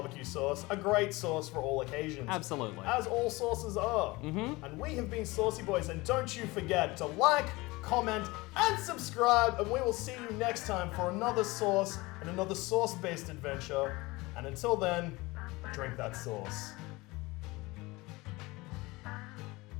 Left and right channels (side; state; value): right; quieter; 22.2 dB